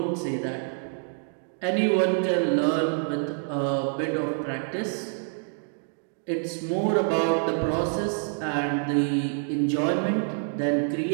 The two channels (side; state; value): left; silent; 60 dB below the other